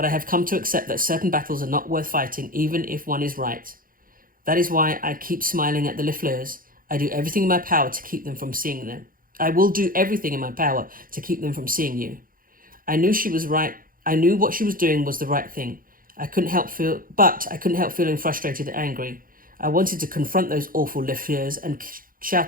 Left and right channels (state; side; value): late; left; 0.41 ms